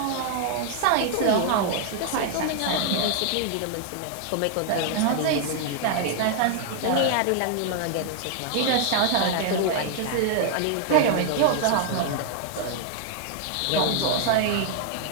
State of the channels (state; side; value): different; both; correlation 0.00